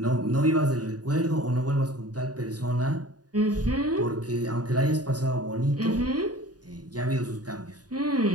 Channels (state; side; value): late; left; 0.68 ms